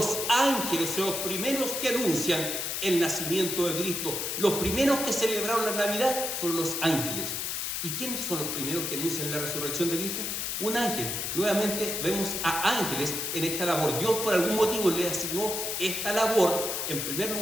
ángeles son los primeros que anuncian el nacimiento de Cristo. Los primeros que celebraron la Navidad fueron los ángeles. ¿Y quiénes son los primeros que anuncian la resurrección de Cristo? Un ángel. Nuevamente vemos a ángeles en esta labor. Dios por algún motivo le asignó esta labor, en primer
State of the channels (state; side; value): noise; left; hiss, 2 dB below the sound